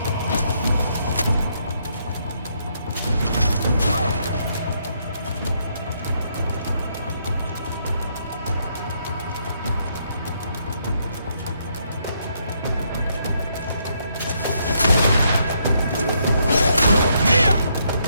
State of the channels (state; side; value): inverted; both; correlation -0.74